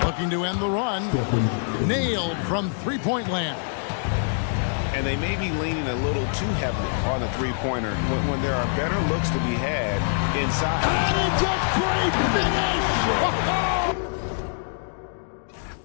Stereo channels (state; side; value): silent; right; digital silence